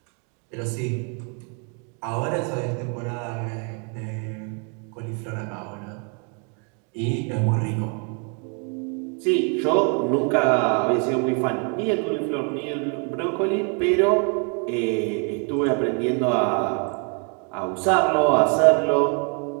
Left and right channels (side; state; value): left; quieter; 38.3 dB